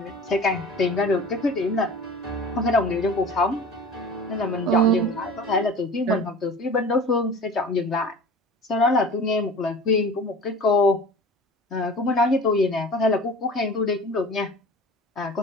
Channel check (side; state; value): both; normal; correlation 0.39